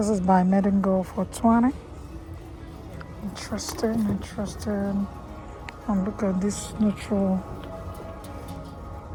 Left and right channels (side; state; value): both; identical; correlation 1.00